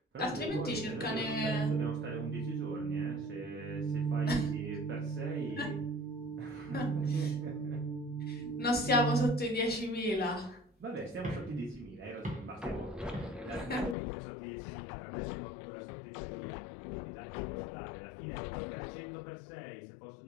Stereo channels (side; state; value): right; drops out; at 14.0 s